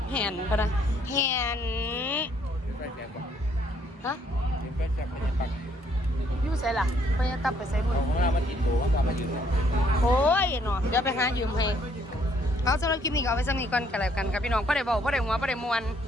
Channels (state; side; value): normal; both; correlation 0.67